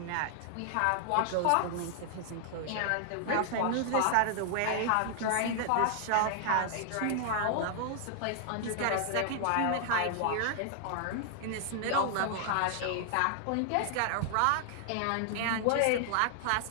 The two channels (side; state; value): both; different; correlation 0.00